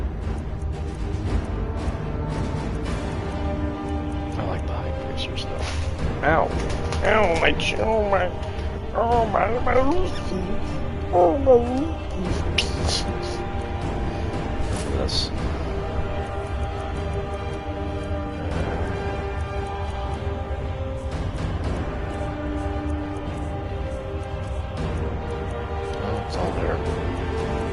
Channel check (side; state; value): both; identical; correlation 1.00